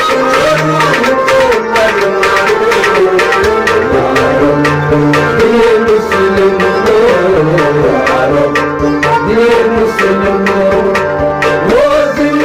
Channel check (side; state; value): both; identical; correlation 1.00